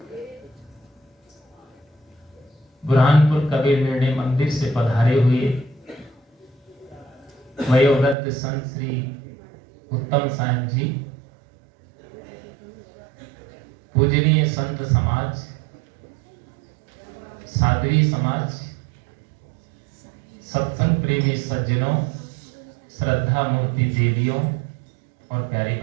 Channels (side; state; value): left; drops out; at 8.2 s